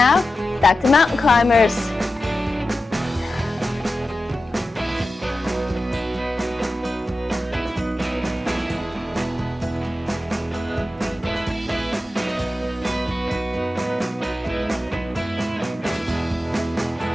back to mountain climbers.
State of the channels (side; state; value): both; normal; correlation 0.93